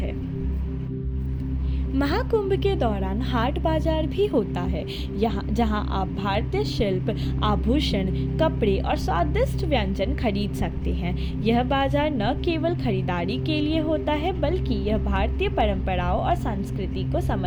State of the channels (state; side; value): identical; both; correlation 1.00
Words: महाकुंभ के दौरान हाट बाजार भी होता है, जहां आप भारतीय शिल्प, आभूषण, कपड़े और स्वादिष्ट व्यंजन खरीद सकते हैं। यह बाजार न केवल खरीदारी के लिए होता है, बल्कि यह भारतीय परंपराओं और संस्कृति को